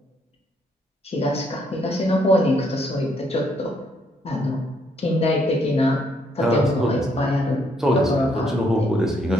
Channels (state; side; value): normal; both; correlation 0.71